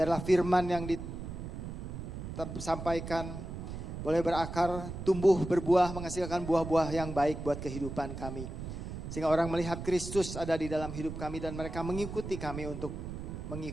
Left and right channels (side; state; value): right; noise; rumble, 7 dB below the sound